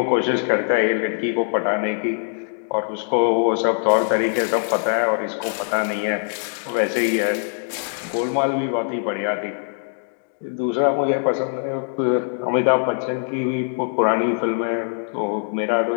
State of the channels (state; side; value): silent; right; digital silence